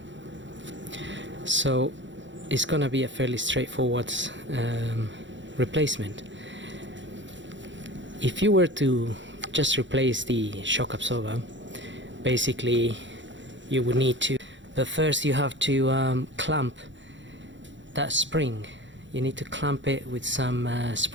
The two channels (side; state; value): left; late; 0.54 ms